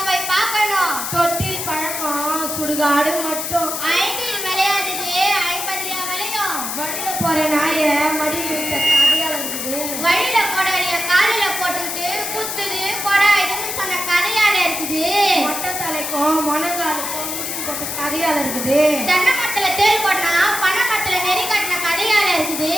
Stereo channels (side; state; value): left; noise; hiss, 4 dB below the sound